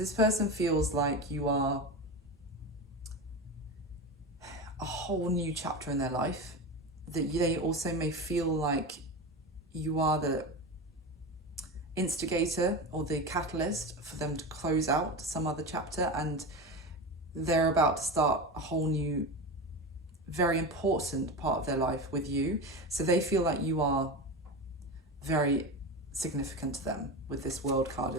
person feels like you are a whole new chapter in their life, that they also may feel like you are the instigator or the catalyst for them to close out some other chapter, and they're about to start a whole new, very important part of their life with you. So they feel like you are very significant to them with this World card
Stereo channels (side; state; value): both; normal; correlation 0.24